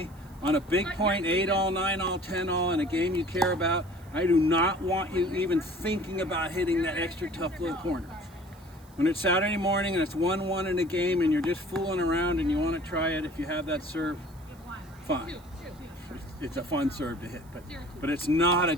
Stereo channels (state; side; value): noise; right; hiss, 28 dB below the sound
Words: On a big point, 8-all, 9-all, 10-all in a game you care about, I do not want you even thinking about hitting that extra tough little corner. When it's Saturday morning and it's 1-1 in a game and you're just fooling around and you want to try it, if you have that serve, fine. It's a fun serve to hit, but it's not a